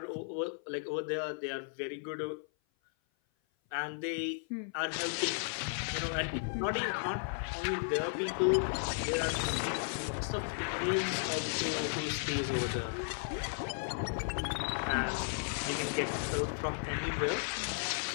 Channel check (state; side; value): silent; right; 54 dB below the other